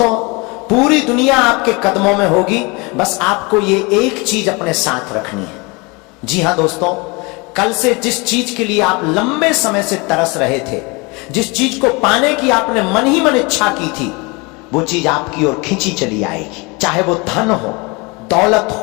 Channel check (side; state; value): right; quieter; 27.6 dB